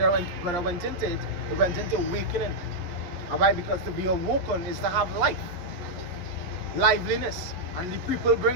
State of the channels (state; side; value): late; left; 11 ms